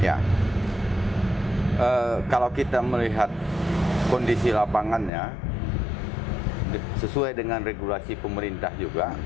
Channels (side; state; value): right; drops out; at 5.1 s